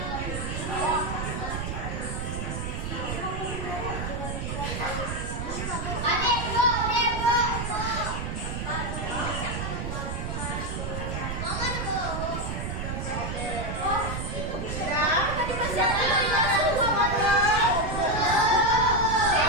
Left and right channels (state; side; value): noise; right; rumble, 4 dB below the sound